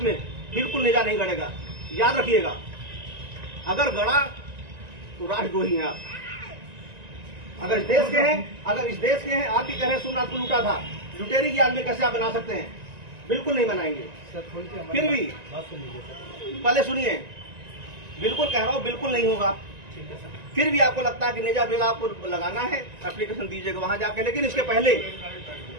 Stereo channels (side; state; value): left; late; 1.9 ms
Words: में बिल्कुल नेजा नहीं गड़ेगा। याद रखिएगा, अगर गड़ा तो राष्ट्रद्रोही हैं आप। अगर इस देश के हैं, आप ही कह रहे हैं सोमनाथ को लूटा था, लुटेरे की याद में कैसे आप बना सकते हैं? बिल्कुल नहीं बनाएंगे। फिर भी पहले सुनिए, बिल्कुल कह रहा हूँ बिल्कुल नहीं होगा। फिर भी आपको लगता है कि नेजा बिल आपको लगाना है, एप्लीकेशन दीजिएगा वहां जाके। लेकिन इसके